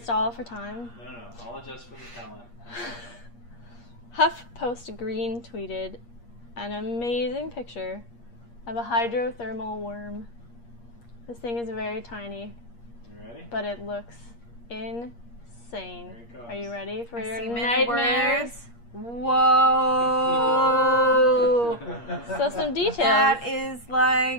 for time? No. I'll adjust for the talent. HuffPost Green tweeted an amazing picture of a hydrothermal worm. This thing is very tiny. You ready? But it looks insane. Here it goes. Are you ready for your see many nightmares? words. Whoa! So some details. That is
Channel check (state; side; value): late; right; 8.5 ms